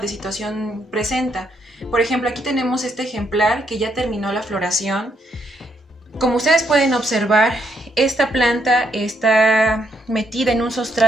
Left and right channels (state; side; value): normal; both; correlation 0.75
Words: de situación presenta. Por ejemplo, aquí tenemos este ejemplar que ya terminó la floración. Como ustedes pueden observar, esta planta está metida en un